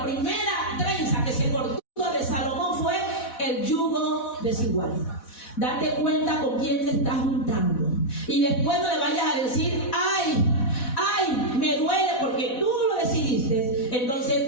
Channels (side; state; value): right; late; 4.1 ms